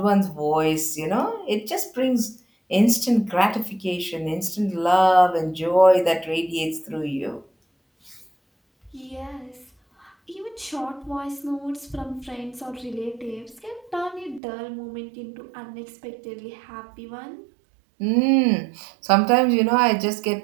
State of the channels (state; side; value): drops out; left; at 14.4 s